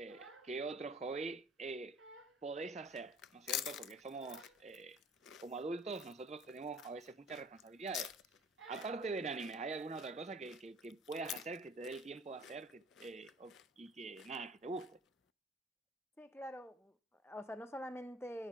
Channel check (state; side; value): normal; both; correlation 0.49